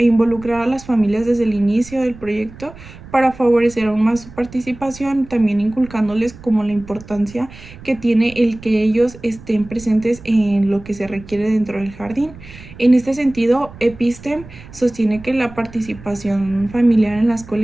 involucrar a las familias desde el inicio del proyecto para favorecer aún más su participación, también inculcándoles como la importancia que tiene el que ellos estén presentes en lo que se requiere dentro del jardín. En este sentido, Epistem sostiene que la participación familiar en la escuela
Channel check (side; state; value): right; noise; rumble, 18 dB below the sound